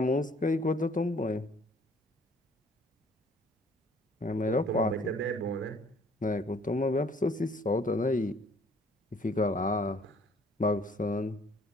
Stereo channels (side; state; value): both; normal; correlation 0.58